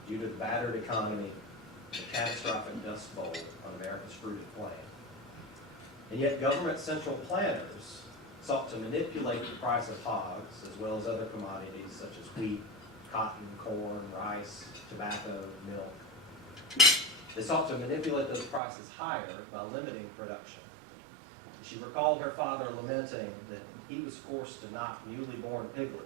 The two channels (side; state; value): left; drops out; at 18.6 s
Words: due to the battered economy, the catastrophic dust bowl on America's fruited plain. And yet government central planners sought to manipulate the price of hogs, as well as other commodities such as wheat, cotton, corn, rice, tobacco, milk. They sought to manipulate those prices higher by limiting production. She recalled her father lamenting that he was forced to knock newly born